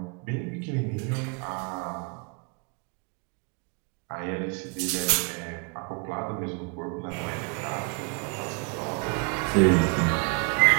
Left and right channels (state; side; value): quieter; left; 33.7 dB